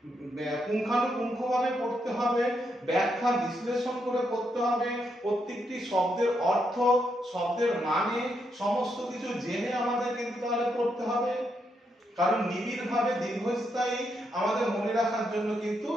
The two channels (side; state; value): both; normal; correlation 0.80